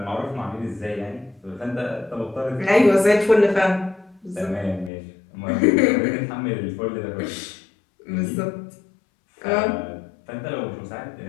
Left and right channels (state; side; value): drops out; right; at 4.9 s